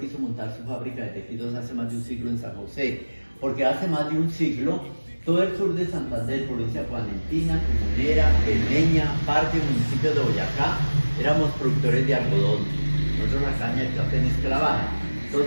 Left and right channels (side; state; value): both; inverted; correlation -1.00